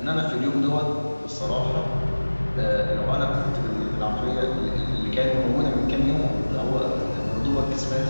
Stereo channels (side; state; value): both; inverted; correlation -1.00